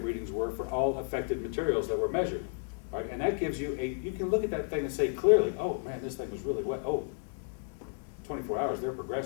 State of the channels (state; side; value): silent; right; digital silence